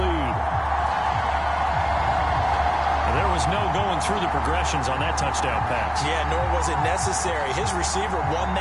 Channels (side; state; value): both; identical; correlation 1.00